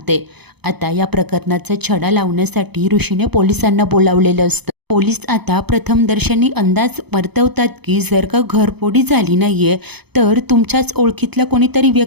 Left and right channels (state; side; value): late; left; 0.98 ms